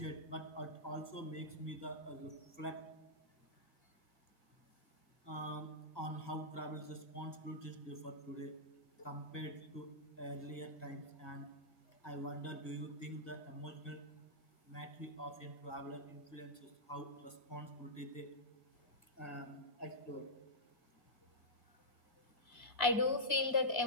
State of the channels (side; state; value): right; late; 1.6 ms